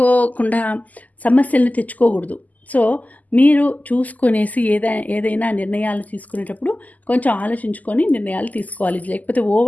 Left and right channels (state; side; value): late; right; 0.079 ms